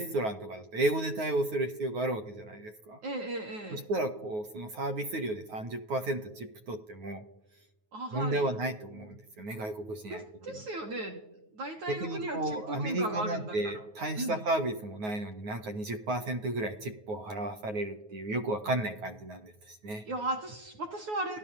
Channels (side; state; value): left; late; 9.4 ms